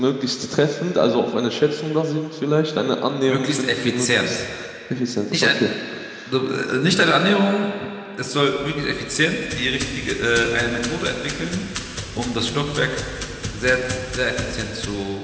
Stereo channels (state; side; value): identical; both; correlation 1.00